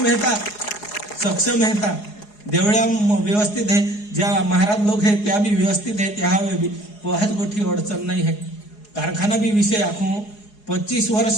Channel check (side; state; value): right; late; 4.8 ms